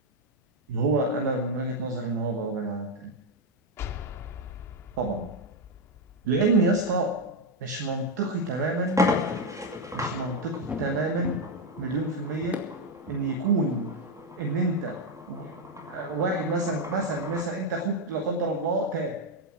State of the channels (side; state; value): both; normal; correlation 0.04